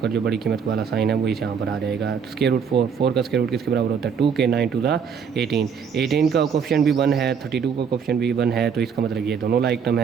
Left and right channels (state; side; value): quieter; left; 6.7 dB